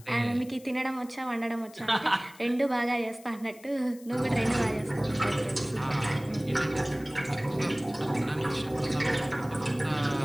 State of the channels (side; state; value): left; noise; hiss, 23 dB below the sound